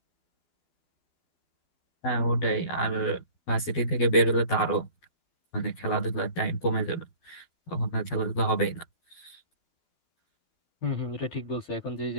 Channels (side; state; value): right; late; 12 ms